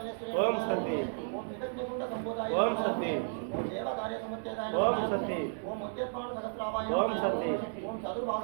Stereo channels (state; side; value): silent; left; digital silence